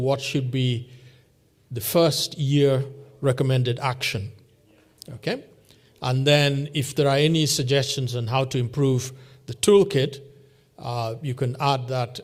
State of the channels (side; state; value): both; identical; correlation 1.00